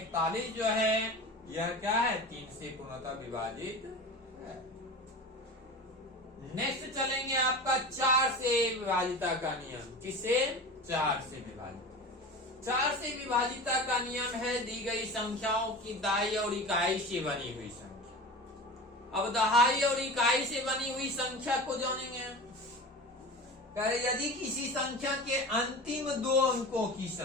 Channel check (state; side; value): normal; both; correlation 0.32